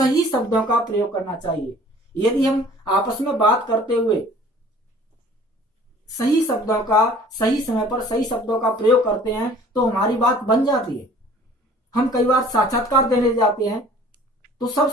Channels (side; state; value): both; normal; correlation 0.50